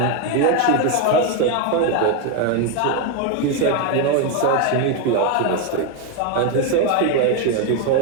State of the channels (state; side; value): different; both; correlation 0.02